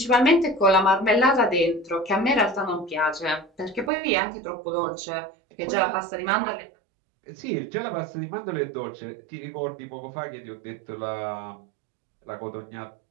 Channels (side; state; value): left; drops out; at 3.9 s